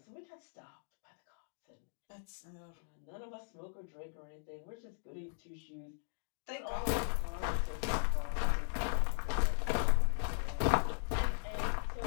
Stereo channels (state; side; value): silent; right; digital silence